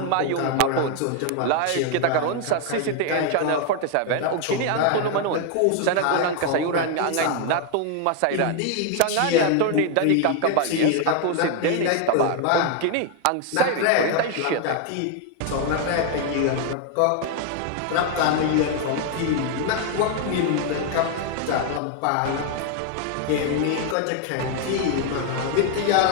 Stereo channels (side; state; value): both; different; correlation 0.00